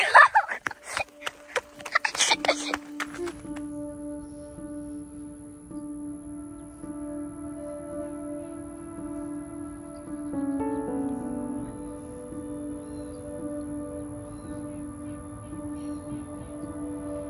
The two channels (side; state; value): both; identical; correlation 1.00